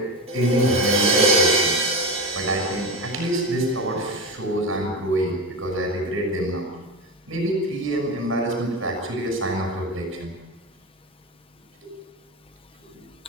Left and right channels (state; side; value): normal; both; correlation 0.22